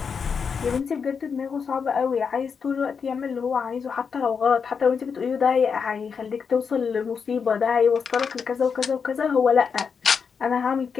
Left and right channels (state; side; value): quieter; right; 6.1 dB